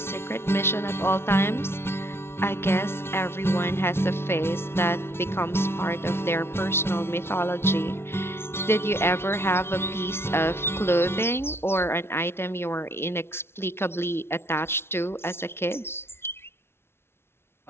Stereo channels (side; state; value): right; late; 0.12 ms